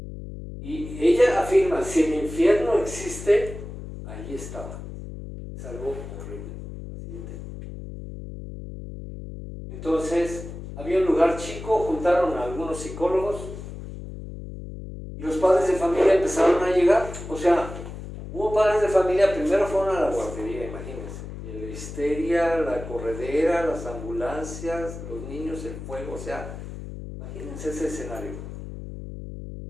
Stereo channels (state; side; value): noise; left; hum, 10 dB below the sound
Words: Y ella afirma, si el infierno existe, ahí estaba. Es algo horrible. Entonces, había un lugar chico, juntaron a algunos psicólogos y los padres de familia empezaron a llegar. O sea, hubo padres de familia, primero fueron a la guardería, imagínense. Y la histeria, la corredera, las ambulancias, los niños, el fuego, o sea, imagínense ese escenario.